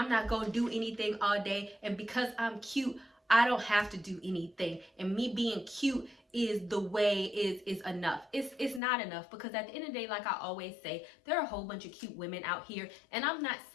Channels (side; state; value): right; drops out; at 8.8 s